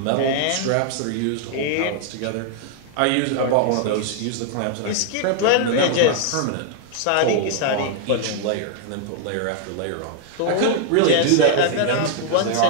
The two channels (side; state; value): both; different; correlation 0.00